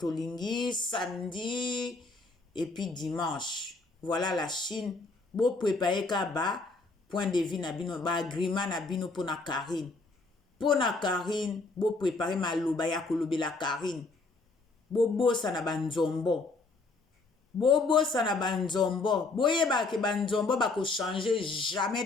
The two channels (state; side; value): quieter; right; 3.6 dB